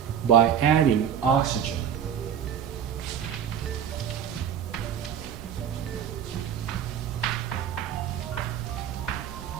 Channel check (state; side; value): quieter; left; 8.7 dB